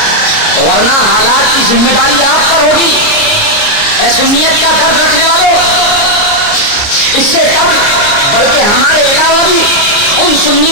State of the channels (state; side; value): late; right; 29 ms